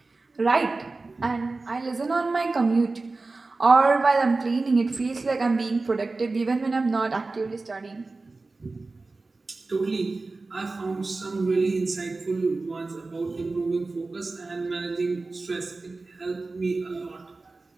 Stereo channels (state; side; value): quieter; left; 3.6 dB